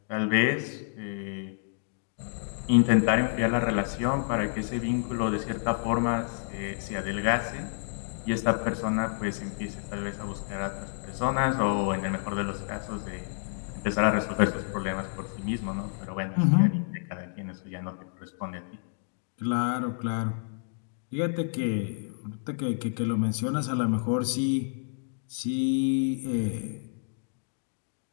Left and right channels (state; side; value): silent; right; digital silence